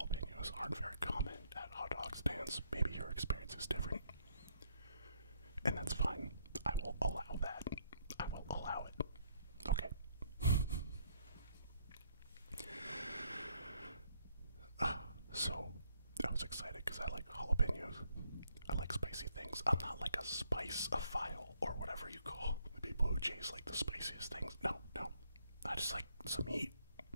aren't very common at hot dog stands. Maybe your experience is different, and that's fine. I will allow that. I will allow it. Okay. So, I was excited because I like jalapeños. I like spicy things. I'm not like a spice-ophile or whatever you call the people who chase like the spiciest things. No, no. I just like some heat.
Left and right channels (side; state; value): both; inverted; correlation -0.70